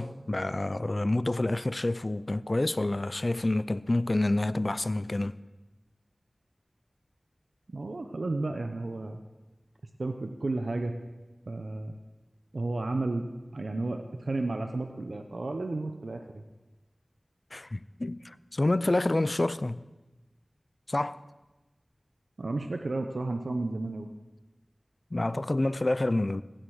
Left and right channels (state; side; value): normal; both; correlation 0.98